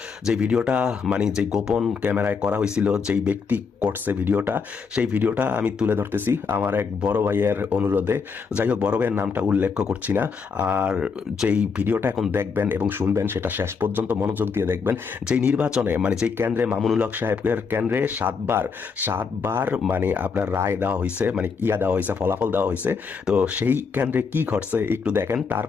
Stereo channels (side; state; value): right; quieter; 5.5 dB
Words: যে ভিডিওটা যে গোপন ক্যামেরায় করা হয়েছিল, যেই ব্যক্তি করছে ভিডিওটা, সেই ভিডিওটা আমি তুলে ধরতেছি আমার এক বড় ভাইয়ের অনুরোধে। যাই হোক, বড় ভাইয়ের নামটা উল্লেখ করছি না। আর যেই ভিডিওটা এখন দেখবেন এবং শুনবেন, সেটা শেষ পর্যন্ত মনোযোগ দিয়ে দেখবেন। যেই নির্বাচনে যেই কেন্দ্রে মামুনুল হক সাহেবের কেন্দ্রে সাতবার আপনার রায় দেওয়া হয়েছে, দেওয়া হয়েছে, ফলাফল দেওয়া হয়েছে। তো সেই কেন্দ্রে কি ঘটছে একটু দেখেন।